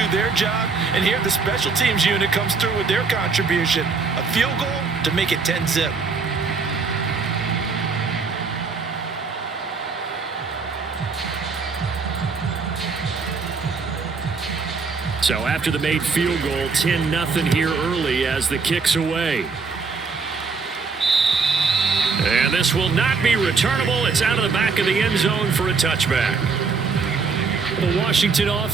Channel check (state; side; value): quieter; left; 4.7 dB